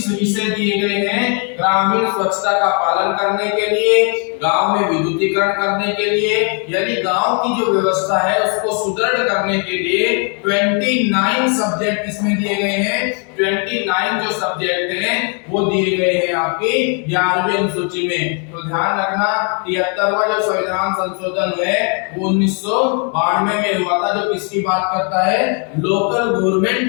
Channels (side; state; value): right; quieter; 39.4 dB